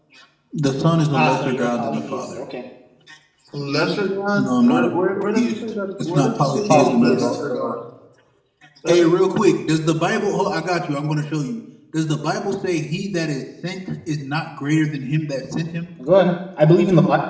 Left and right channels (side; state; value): both; identical; correlation 1.00